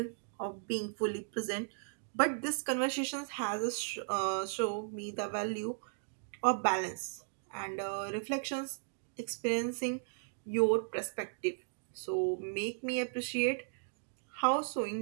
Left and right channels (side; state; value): left; silent; digital silence